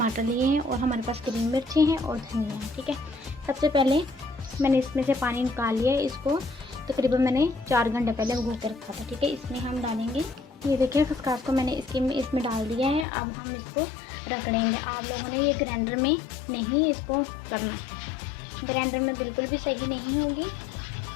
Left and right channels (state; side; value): drops out; right; at 13.1 s